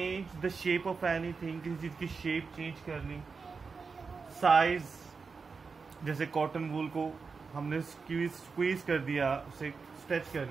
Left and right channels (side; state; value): left; quieter; 4.9 dB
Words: the shape of anything. किसी चीज की शेप चेंज कर ली, साइज, जैसे कॉटन वूल को हमने स्क्वीज कर दिया, उसे स्ट्रेच कर